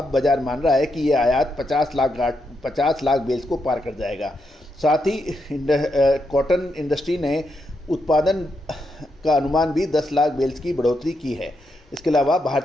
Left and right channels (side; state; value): both; normal; correlation 0.82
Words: बाजार मान रहा है कि ये आयात 50 लाख बेल्स को पार कर जाएगा। साथ ही कॉटन इंडस्ट्री ने उत्पादन का अनुमान भी 10 लाख बेल्स की बढ़ोतरी की है। इसके अलावा